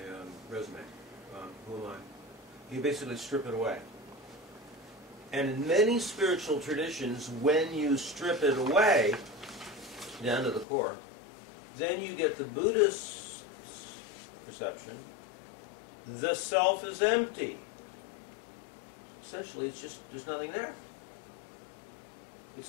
resume. Who am I? You basically strip it away. And in many spiritual traditions, when you strip it away, down to the core, then you get the Buddhist perception, the self is empty. Essentially, it's just, there's nothing there.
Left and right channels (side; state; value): right; drops out; at 10.7 s